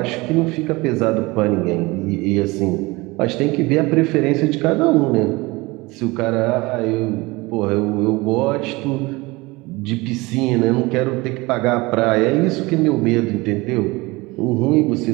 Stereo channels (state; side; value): quieter; left; 22.9 dB